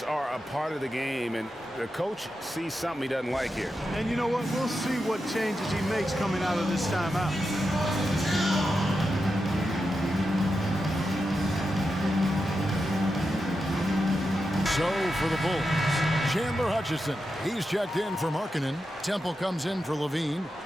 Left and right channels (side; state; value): both; normal; correlation 0.88